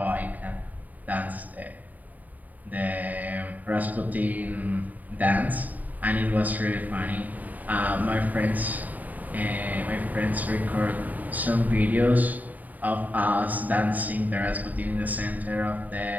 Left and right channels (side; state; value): left; late; 0.079 ms